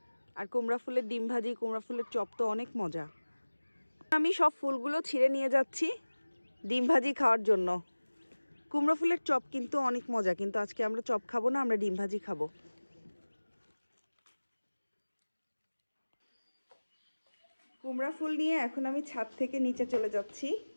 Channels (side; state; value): both; inverted; correlation -1.00